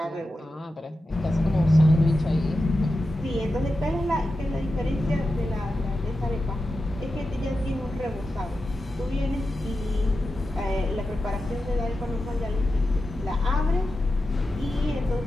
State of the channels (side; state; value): both; normal; correlation 0.91